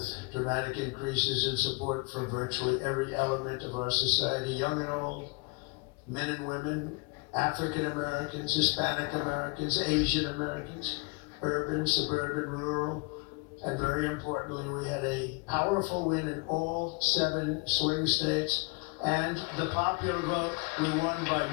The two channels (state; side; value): quieter; right; 29.9 dB